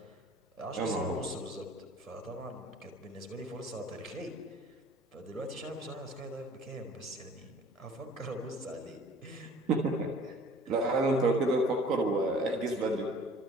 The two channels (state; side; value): normal; both; correlation 0.51